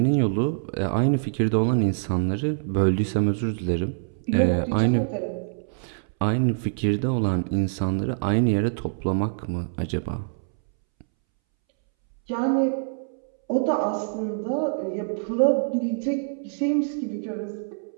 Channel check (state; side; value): silent; left; 62 dB below the other